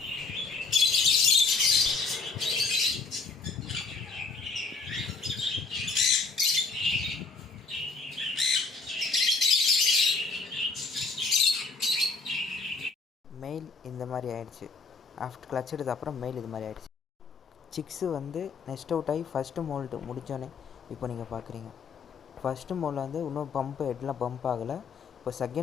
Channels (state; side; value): quieter; right; 4.3 dB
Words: மெயில் இந்த மாதிரி ஆயிடுச்சு. ஆஃப்டர் கிளச் எடுத்த அப்புறம் மெயில் இது மாதிரி ஆயிடுச்சு. சிக்ஸு வந்து நெக்ஸ்ட் அவுட் ஆகி ஃபஸ்ட்டு மோல்ட்டு முடித்தோன்னே இப்போ நீங்கள் பார்க்குறீங்க. ஃபஸ்ட்டு மோல்ட் வந்து இன்னும் பம்ப்பு ஹெட்லாம் பம்ப் ஆகலை. இப்போ